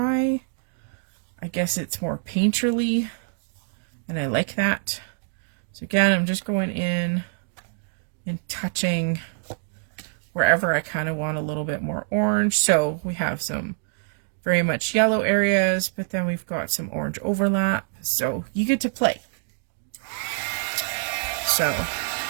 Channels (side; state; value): left; silent; digital silence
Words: I guess it's more painterly, and I like that. So again, I'm just going in and touching wherever I kind of want a little bit more orange. So we have some very much yellow areas, but then we've got some orange overlap. So you get to play. So